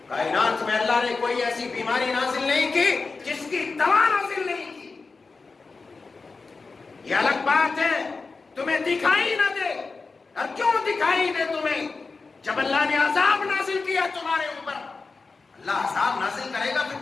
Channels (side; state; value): right; quieter; 4.2 dB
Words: کائنات میں اللہ نے کوئی ایسی بیماری نازل نہیں کی جس کی دوا نازل نہیں کی۔ یہ الگ بات ہے تمہیں دکھائی نہ دے۔ اور کیوں دکھائی دے تمہیں؟ جب اللہ نے عذاب نازل کیا تمہارے اوپر، اللہ عذاب نازل کرے گا پھر